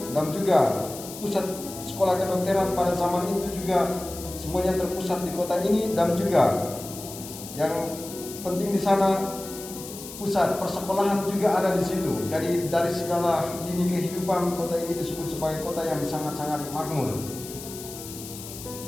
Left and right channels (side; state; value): left; noise; hiss, 12 dB below the sound